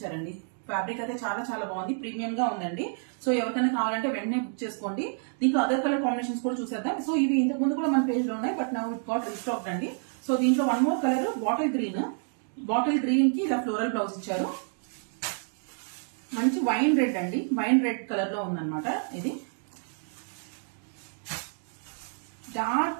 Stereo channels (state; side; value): silent; left; 56 dB below the other